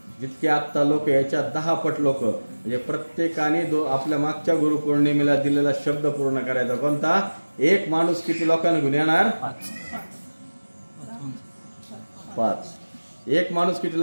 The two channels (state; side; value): inverted; both; correlation -1.00